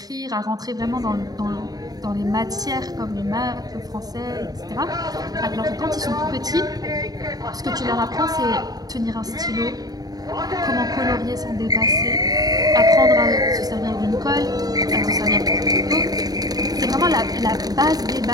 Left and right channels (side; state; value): left; late; 0.18 ms